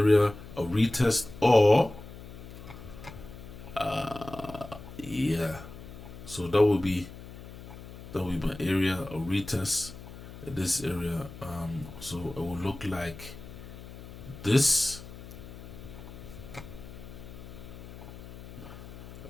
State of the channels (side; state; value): left; noise; hum, 14 dB below the sound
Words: a retest, or yeah. So that would be my area, a retest at this area. So it will look like this,